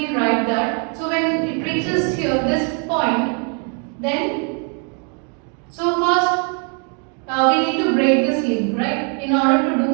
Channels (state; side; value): quieter; left; 39.6 dB